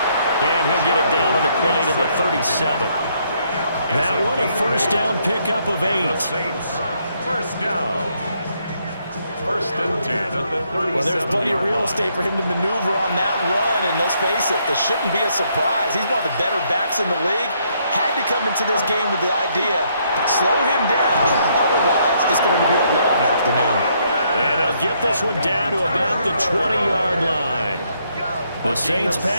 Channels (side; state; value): both; inverted; correlation -0.72